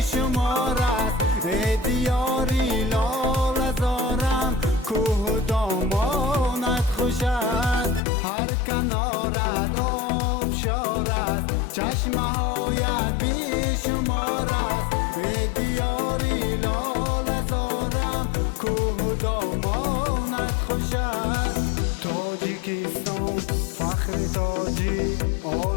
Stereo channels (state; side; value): drops out; right; at 8.0 s